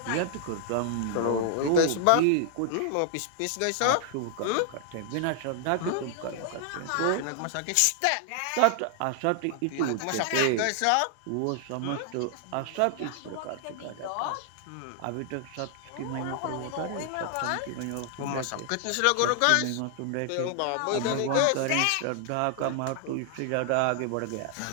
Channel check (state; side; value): different; both; correlation 0.00